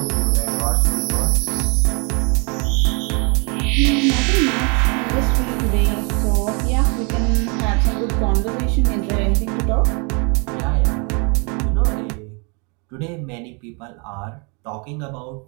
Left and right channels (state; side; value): quieter; left; 33.9 dB